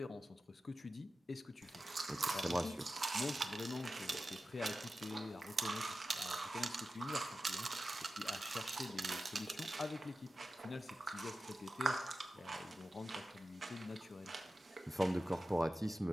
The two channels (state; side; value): normal; both; correlation 0.93